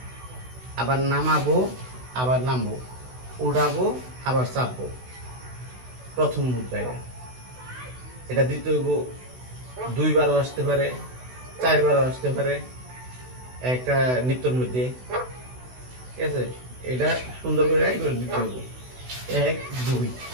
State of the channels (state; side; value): late; left; 16 ms